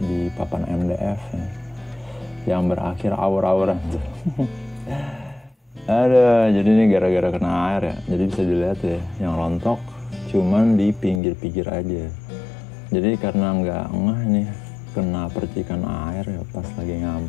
di papan MDF ya. Yang berakhir awur-awuran tuh. Jadi ini gara-gara kena air ya. Jadi bisa dilihat ya, yang rontok cuman di pinggir-pinggir aja. Jadi karena nggak ngeh nih kena percikan air ya pas lagi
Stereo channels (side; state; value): right; drops out; at 11.2 s